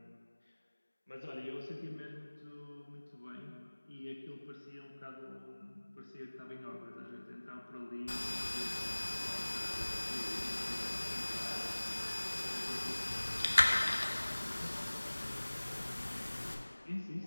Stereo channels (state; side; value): inverted; both; correlation -1.00